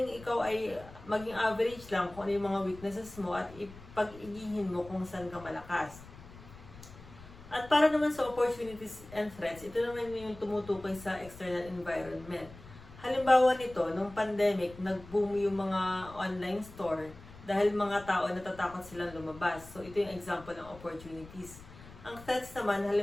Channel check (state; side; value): noise; left; rumble, 18 dB below the sound